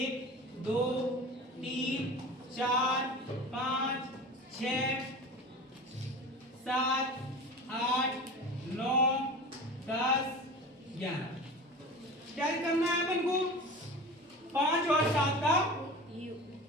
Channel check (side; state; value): both; normal; correlation 0.34